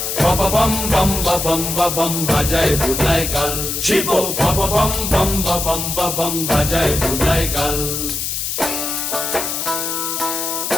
বব বম বম বম বাজায় বুলায় গাল, শিব বব বম বম বম বাজায় বুলায় গাল।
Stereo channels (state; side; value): noise; left; hiss, 2 dB below the sound